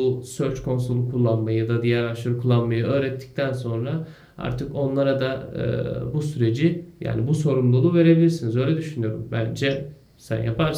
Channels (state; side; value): identical; both; correlation 1.00